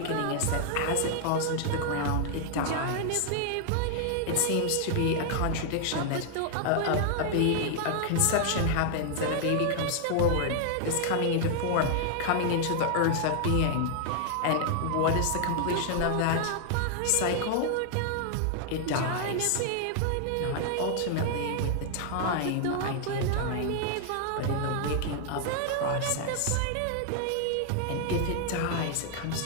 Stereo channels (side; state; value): both; different; correlation 0.00